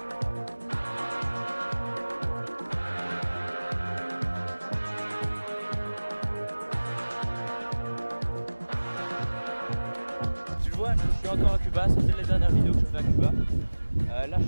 Je suis encore à Cuba, c'était la dernière vidéo que je fais à Cuba. Là je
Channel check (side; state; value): both; inverted; correlation -1.00